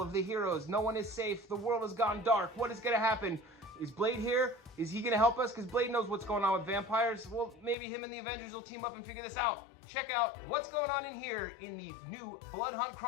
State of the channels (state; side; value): drops out; right; at 7.8 s